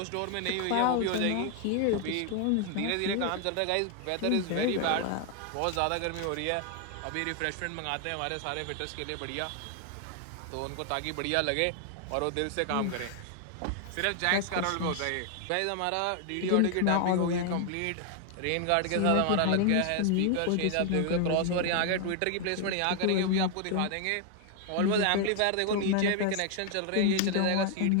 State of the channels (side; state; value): both; different; correlation 0.00